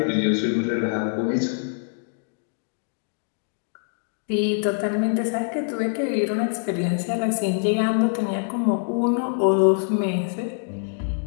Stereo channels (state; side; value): silent; right; digital silence